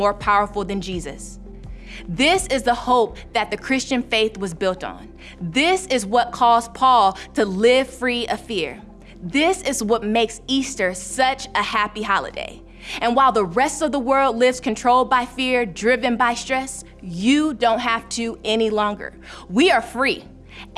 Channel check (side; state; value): both; identical; correlation 1.00